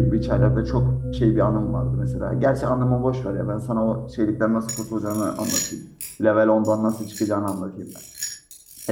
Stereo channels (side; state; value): both; identical; correlation 1.00